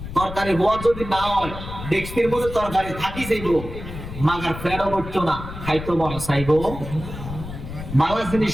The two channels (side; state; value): left; noise; rumble, 10 dB below the sound